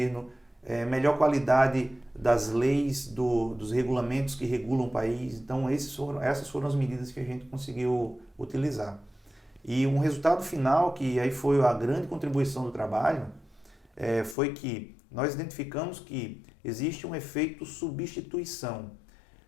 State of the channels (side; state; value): right; drops out; at 14.4 s